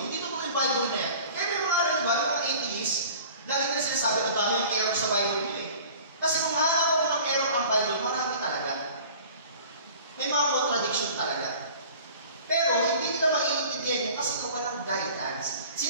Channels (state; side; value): inverted; both; correlation -0.45